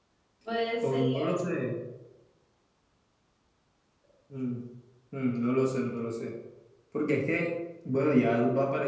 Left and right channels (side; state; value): both; identical; correlation 1.00